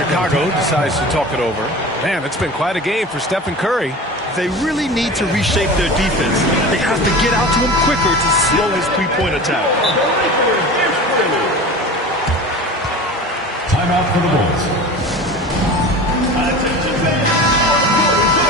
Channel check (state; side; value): normal; both; correlation 0.34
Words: decides to talk it over. Man, it's been quite a game for Stephen Curry. They really need to reshape their defense. They have to get out to him quicker to slow his three-point attack. Timeout for the Bulls.